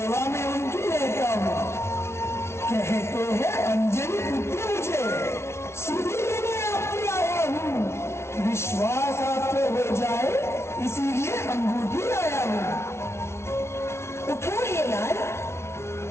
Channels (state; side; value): late; right; 0.13 ms